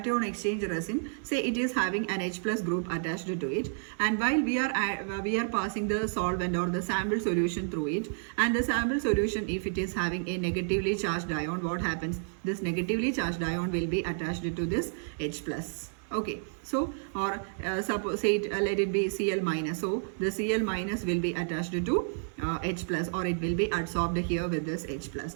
exchange resin, say it is having an H plus group attached to it, and while we are passing the solvent or the sample solution through it, and the sample solution, if it is having a negatively charged ion, what happens? This negatively charged ion will be attached to this H plus. Okay, so or suppose say it, let it be Cl minus. So the Cl minus will be attached to H plus, or it will be adsorbed here with this H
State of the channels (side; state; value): left; silent; 58 dB below the other